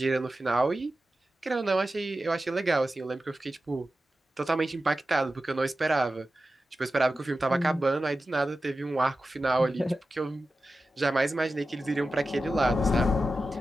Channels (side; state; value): both; normal; correlation 0.93